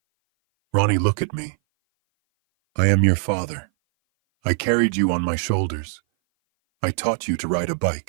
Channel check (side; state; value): left; silent; 59 dB below the other